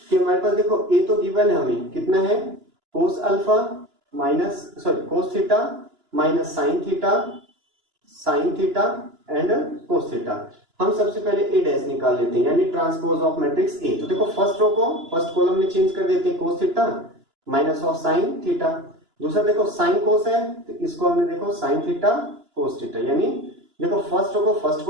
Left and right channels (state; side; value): late; left; 2.9 ms